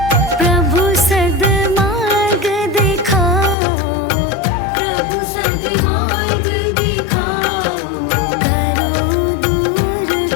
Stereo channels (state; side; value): drops out; right; at 3.6 s